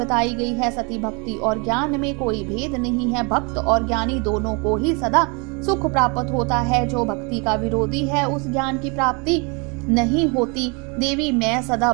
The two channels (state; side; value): quieter; left; 31.4 dB